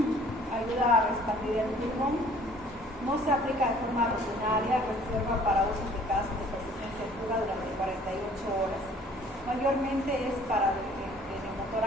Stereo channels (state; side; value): normal; both; correlation 0.54